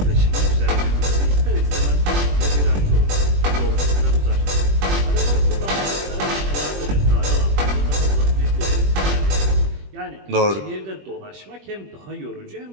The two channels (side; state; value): left; late; 21 ms